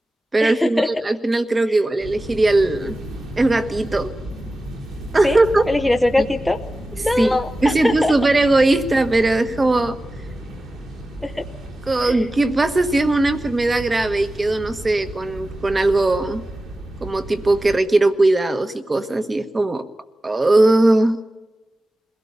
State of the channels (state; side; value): normal; both; correlation 0.95